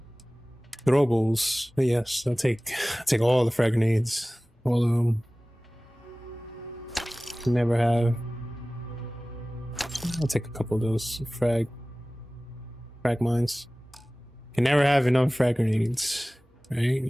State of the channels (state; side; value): normal; both; correlation 0.98